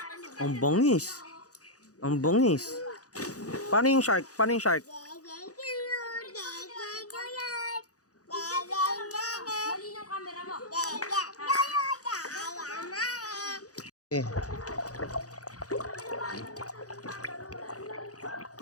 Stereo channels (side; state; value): right; late; 0.67 ms